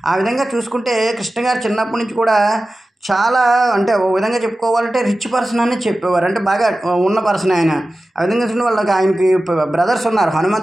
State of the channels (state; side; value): normal; both; correlation 0.95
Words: ఆ విధంగా చూసుకుంటే కృష్ణ గారు చిన్నప్పటి నుంచి కూడా చాలా, అంటే ఓ విధంగా చెప్పుకోవాలంటే రిచ్ పర్సన్ అని చెప్పేవారు, అంటే బాగా ఉన్న పర్సన్ ఆయన. ఆ విధంగా చూడండి వాళ్ళకి ఆయనకి బ్రదర్స్ ఉన్నారు,